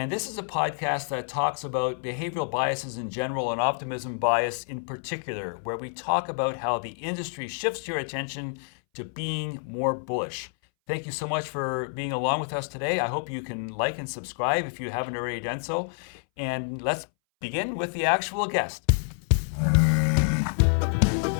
this is a podcast that talks about behavioral biases in general and optimism bias in particular, where we talk about how the industry shifts your attention to being more bullish. Thank you so much for being along with us today. I hope you can like and subscribe if you haven't already done so. And let's begin with the actual guest.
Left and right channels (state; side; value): silent; right; 59 dB below the other